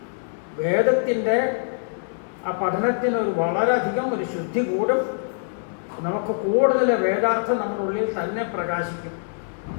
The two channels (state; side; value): silent; right; digital silence